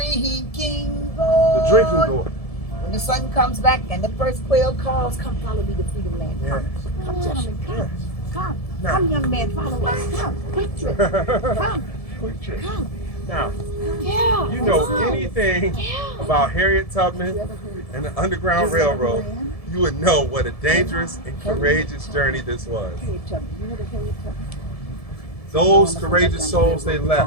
gourd. the drinking gourd. When the sun comes back and the first quail calls, come follow me to freedom land. Come, come gentlemen, come. Yes. Come, Now. come, young man, follow us. Come, quick trip. Come, Quick trick. come. Now, Yeah. you know anything about Harriet Tubman and the Underground Railroad, you would know what a dangerous and courageous journey this was. Harriet Tubman. You heard of Harriet Tubman? Those courageous souls, they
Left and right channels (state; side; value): late; right; 1.7 ms